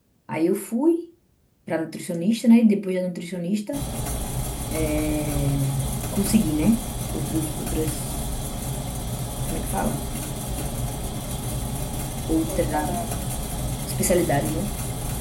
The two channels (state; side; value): identical; both; correlation 1.00